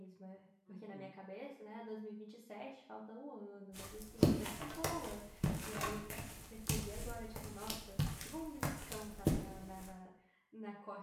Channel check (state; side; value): identical; both; correlation 1.00